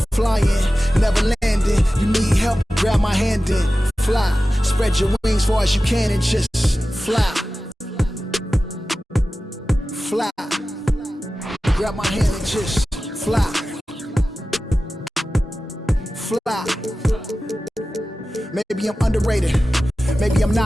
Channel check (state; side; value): normal; both; correlation 0.95